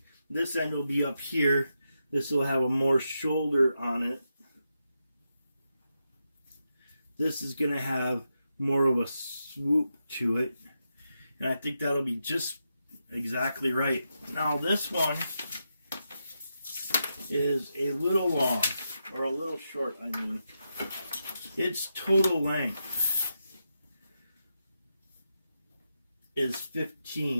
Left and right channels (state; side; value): inverted; both; correlation -0.85